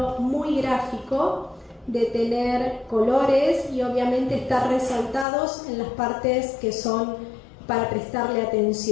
muy gráfico, de tener colores y obviamente estar resaltados en las partes que son para prestarle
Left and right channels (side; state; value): right; drops out; at 5.2 s